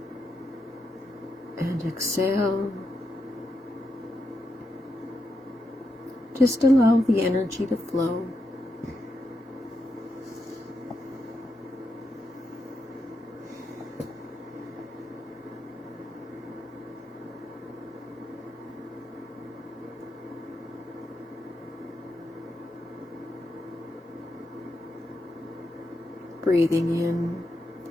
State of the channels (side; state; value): both; normal; correlation 0.84